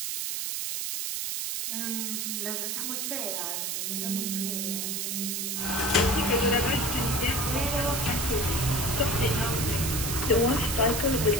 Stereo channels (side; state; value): right; noise; hiss, 2 dB below the sound